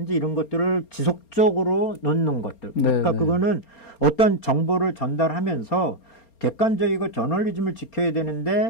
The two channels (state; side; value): late; right; 4.3 ms